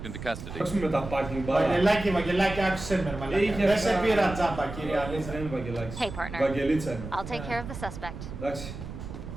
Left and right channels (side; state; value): right; noise; rumble, 10 dB below the sound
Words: into custody. Ας πούμε τα parking bar. Βαγγελάκι, άκουσέ με ρε μαλάκα. Είχε Δεν σε αυτά- πήρα τζάμπα κύριε Αλίζα. Δεν είναι Βαγγελάκης. Hey, partner. Βαγγελίτσα είναι. I'll take care of the suspect. Εντάξει.